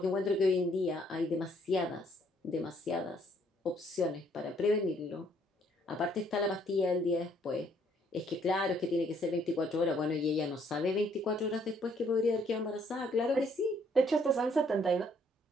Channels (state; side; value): normal; both; correlation 0.66